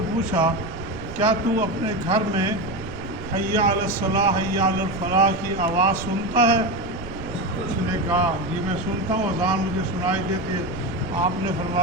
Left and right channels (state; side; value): noise; right; rumble, 13 dB below the sound